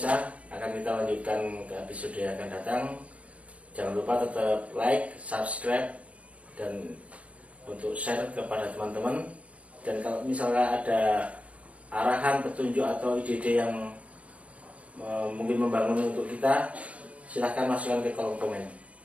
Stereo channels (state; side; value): late; left; 0.065 ms